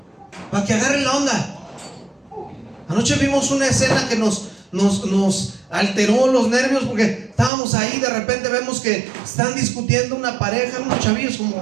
para que agarre la onda. Anoche vimos una escena que nos alteró los nervios porque estábamos ahí. De repente vemos que están discutiendo una pareja, unos chavillos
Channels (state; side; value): drops out; left; at 7.5 s